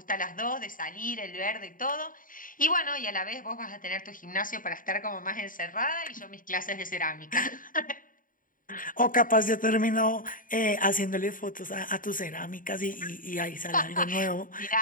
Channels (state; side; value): late; right; 0.39 ms